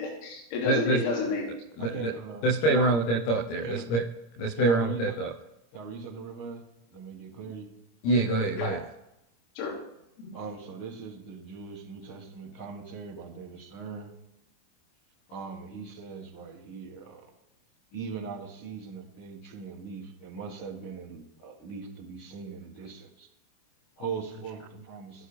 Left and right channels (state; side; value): late; right; 26 ms